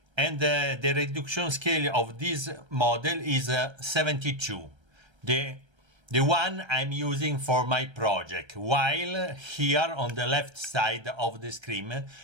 and the reduction scale of this model is 72. The one I'm using for my project, while here on the left side of the screen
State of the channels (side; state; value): left; late; 1.3 ms